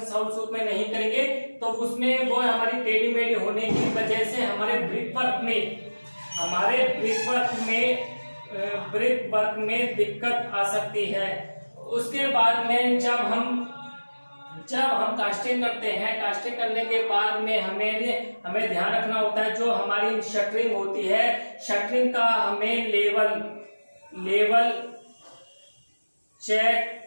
साहुल सूत में नहीं करेंगे तो उसमें वो हमारी टेढ़ी मेढ़ी होने की वजह से हमारे ब्रिक वर्क में दिक्कत आ सकती है। उसके बाद में जब हम कास्टिंग करते हैं, कास्टिंग करने के बाद में हमें ध्यान रखना होता है, जो हमारी शटरिंग होती है, शटरिंग का हमें लेवल चेक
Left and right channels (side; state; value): both; inverted; correlation -1.00